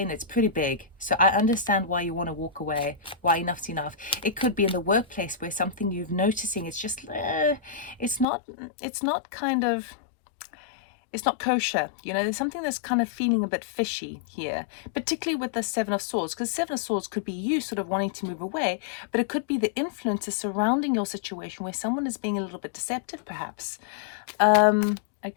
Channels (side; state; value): right; drops out; at 8.2 s